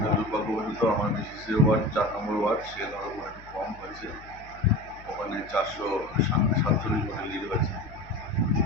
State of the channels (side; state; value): left; noise; hum, 20 dB below the sound